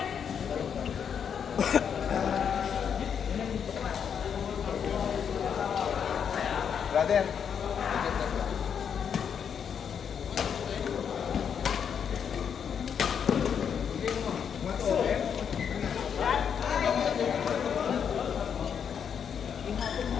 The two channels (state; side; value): quieter; right; 7.6 dB